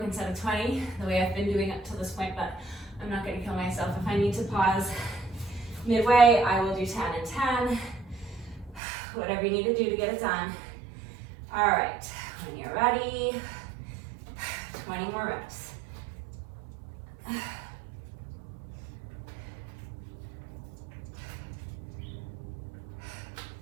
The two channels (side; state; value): left; drops out; at 8.8 s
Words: set of 20, the way I've been doing it to this point, but I'm not gonna kill myself. If I need to pause midway, I will do 10 and 10. Whatever you need to do to get it done. All right, when you're ready, 20 more reps.